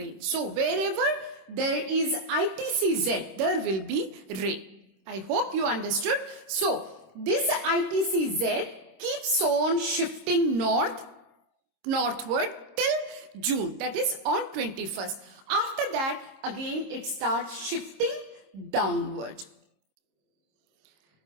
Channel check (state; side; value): late; left; 26 ms